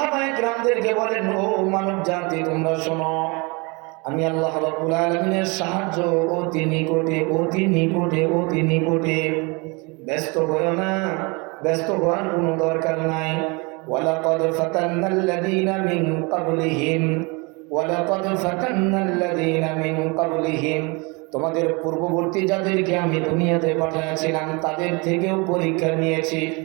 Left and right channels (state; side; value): quieter; left; 28.7 dB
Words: কেরামদেরকে বলেন, ও মানব জাতি তোমরা শোনো, আমি আল্লাহ রাব্বুল আলামিনের সাহায্য অতি নিকটে, অতি নিকটে, অতি নিকটে। ব্যস্ত হয়ো না, ব্যস্ত হওয়ার কোনো দরকার নাই। ওয়ালাকাদ ফাতান্নাল্লাযীনা মিন ক্বাবলিহিম, ওয়ালাকাদ ফাতান্নাল্লাযীনা মিন ক্বাবলিহিম, তোমাদের পূর্ববর্তী যাদেরকে আমি দুনিয়াতে পাঠিয়েছিলাম তাদের থেকেও পরীক্ষা নিয়েছি।